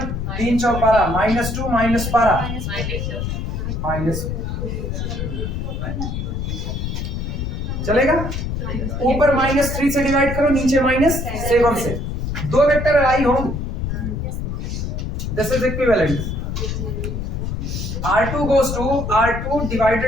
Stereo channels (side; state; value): left; noise; rumble, 3 dB below the sound